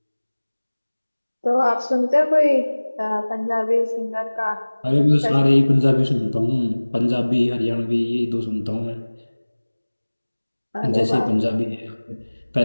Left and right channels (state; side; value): inverted; both; correlation -1.00